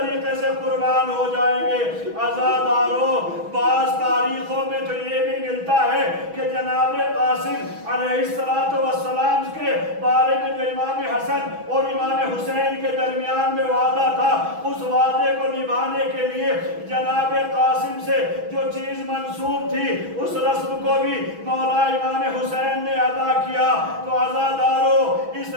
سے قربان ہو جائیں گے۔ عزادارو، بعض تاریخوں میں تو یہ بھی ملتا ہے کہ جناب قاسم علیہ السلام کے بارے میں جو امام حسن اور امام حسین کے درمیان میں وعدہ تھا، اس وعدے کو نبھانے کے لیے جناب قاسم سے جو چیز منسوب تھی اس رسم کو بھی مولا امام حسین نے ادا کیا۔ تو عزادارو، اس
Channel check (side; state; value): left; late; 6.2 ms